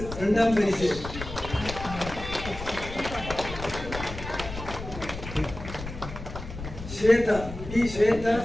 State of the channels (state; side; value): noise; left; rumble, 10 dB below the sound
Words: இரண்டாம் பரிசு. ஸ்வேதா டி ஸ்வேதா